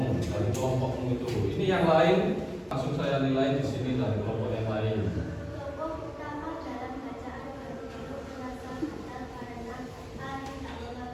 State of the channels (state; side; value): identical; both; correlation 1.00